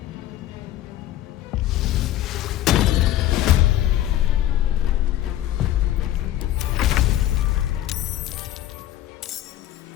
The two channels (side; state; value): right; quieter; 13.2 dB